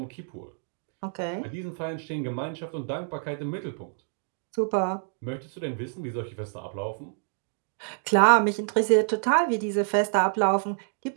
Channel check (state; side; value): silent; left; 60 dB below the other